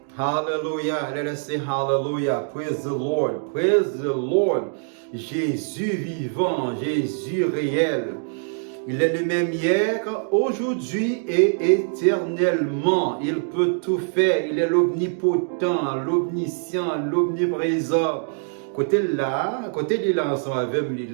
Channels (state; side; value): silent; left; 63 dB below the other